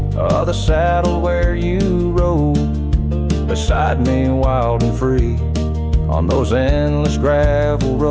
of the saddle where you rode beside me, wild and free, on those endless gravel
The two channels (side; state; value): both; identical; correlation 1.00